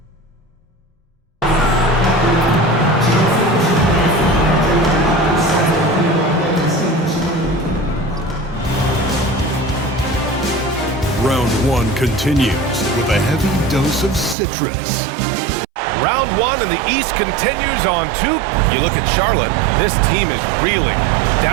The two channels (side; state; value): left; drops out; at 14.4 s